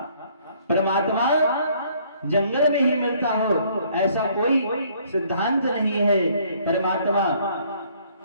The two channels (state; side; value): inverted; both; correlation -0.62